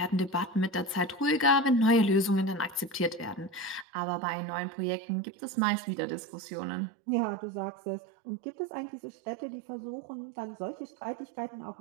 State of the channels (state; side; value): drops out; left; at 3.9 s